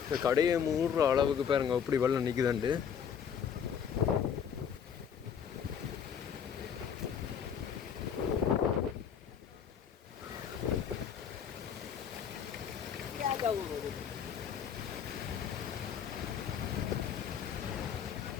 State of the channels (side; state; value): right; quieter; 7.8 dB